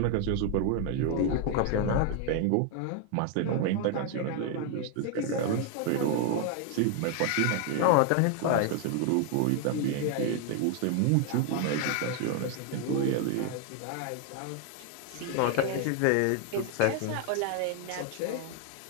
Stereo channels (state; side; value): different; both; correlation 0.01